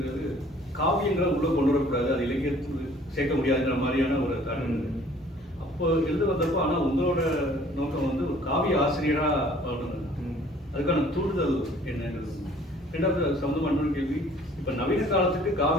காவியங்களை உள்ள கொண்டு வரக்கூடாது, அது இலக்கியத்துக்கு சேர்க்க முடியாதுங்கிற மாதிரியான ஒரு காரணம். அப்போ எழுத வந்தப்போ, ஆனால் உங்களோட நோக்கம் வந்து ஒரு காவிய ஆசிரியராக வரணும். அதுக்கான தூண்டுதல் என்னங்கிறது. ரெண்டாவது சம்பந்தமான கேள்வி, இப்போ நவீன காலத்துக்கு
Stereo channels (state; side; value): normal; both; correlation 0.54